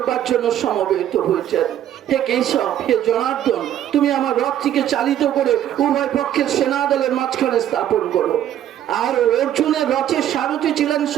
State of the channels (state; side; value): quieter; left; 11.2 dB